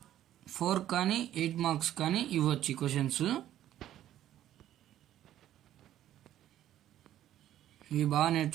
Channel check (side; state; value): left; quieter; 12.2 dB